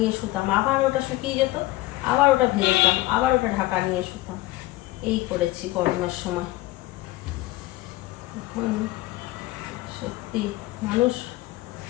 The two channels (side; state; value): right; quieter; 18.3 dB